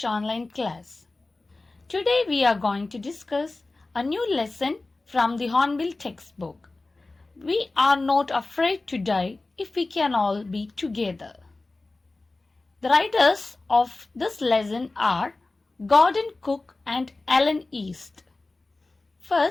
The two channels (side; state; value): right; quieter; 3.2 dB